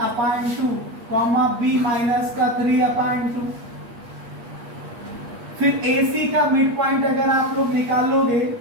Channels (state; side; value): late; left; 8.4 ms